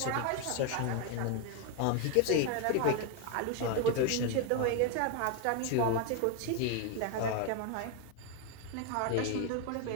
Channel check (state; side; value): different; both; correlation 0.01